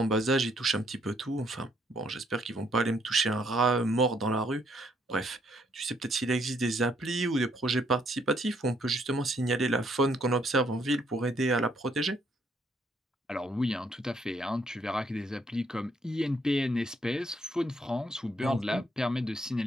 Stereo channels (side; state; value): both; normal; correlation 0.70